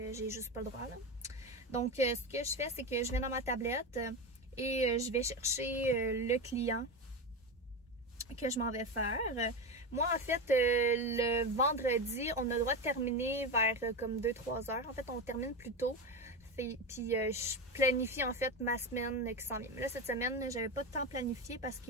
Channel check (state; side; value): normal; both; correlation 0.18